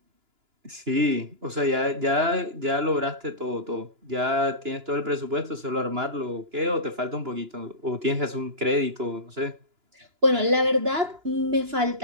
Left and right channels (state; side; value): late; left; 2.9 ms